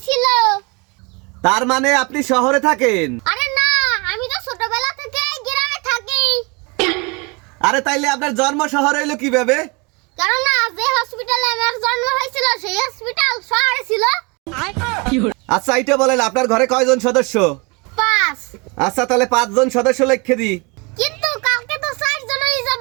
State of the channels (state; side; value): quieter; left; 29.4 dB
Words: তার মানে আপনি শহরে থাকেন? আরে না, আমি তো ছোটবেলা থেকে গ্রামে থাকি। আরে তাইলে আপনার জন্ম শহরে হইলো কিভাবে? কারণ না, যে হসপিটালে আমার জন্ম হয়েছিল সেই হসপিটাল শহরে ছিল। আচ্ছা, এইটা বলেন, আপনার ঘরে কয়জন সদস্য? 5। আচ্ছা, তাহলে 5 জন সদস্য লিখে দিই। কিন্তু কালকে তো 4 জন হয়ে